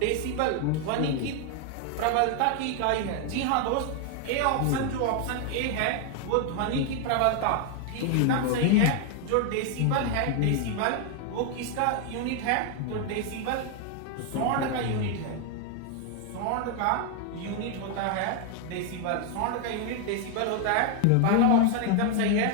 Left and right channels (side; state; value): both; different; correlation 0.01